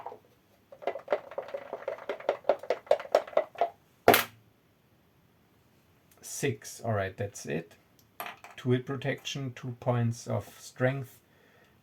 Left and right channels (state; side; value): identical; both; correlation 1.00